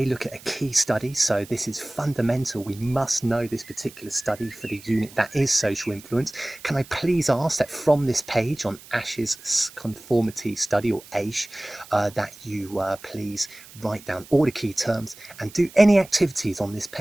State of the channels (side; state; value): right; noise; hiss, 20 dB below the sound